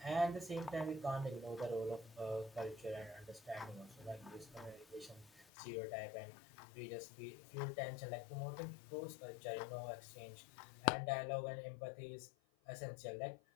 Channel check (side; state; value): right; drops out; at 5.5 s